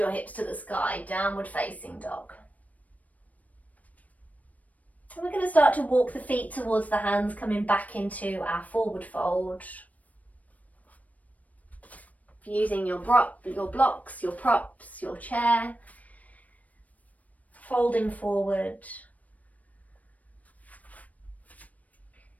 hips to the sky, downward facing dog. And we're going to start to walk the feet towards the hands, coming back into our forward fold. Using your blocks, your props, your chair. Folding forward.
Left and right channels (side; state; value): right; late; 0.071 ms